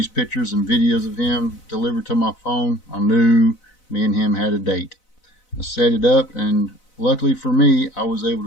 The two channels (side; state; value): right; late; 4.0 ms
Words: pictures and videos of him delivered to my phone, I knew me and him had a date. I set it up, and luckily for me, I was able